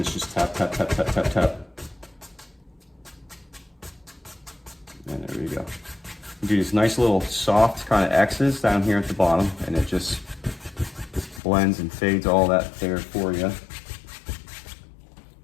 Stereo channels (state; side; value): drops out; right; at 11.4 s